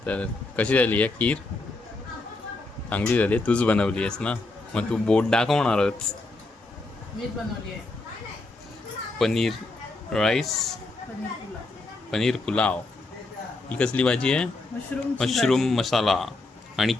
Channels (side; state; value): right; quieter; 3.2 dB